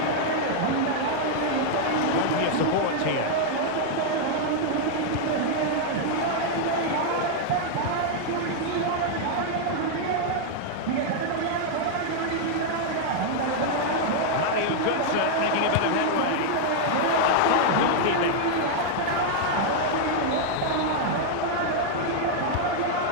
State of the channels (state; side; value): different; both; correlation -0.01